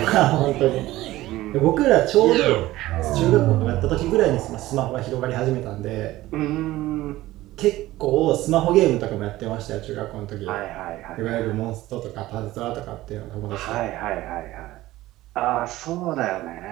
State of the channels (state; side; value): quieter; left; 16.7 dB